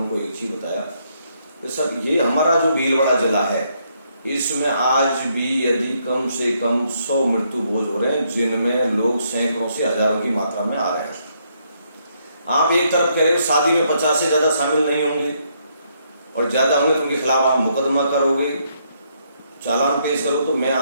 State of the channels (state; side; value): inverted; both; correlation -0.73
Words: एक चीज बताया कि सर ये हमारा जो भीलवाड़ा जिला है इसमें आज भी यदि कम से कम 100 मृत्यु भोज हो रहे हैं, जिनमें लोग सैकड़ों से हजारों की मात्रा में आ रहे हैं। आप एक तरफ कह रहे हो शादी में 50 से ज्यादा शामिल नहीं होंगे और ज्यादा होंगे तो उनके खिलाफ आप मुकदमा करोगे, चालान पेश करो। तो मैं